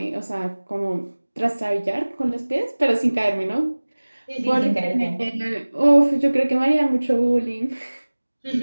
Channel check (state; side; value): inverted; both; correlation -1.00